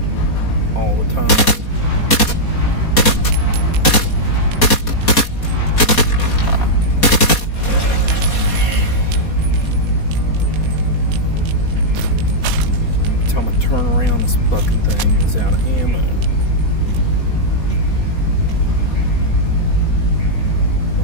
all the time? Every time I turn around, this fucking thing is out of ammo.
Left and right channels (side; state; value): right; late; 4.2 ms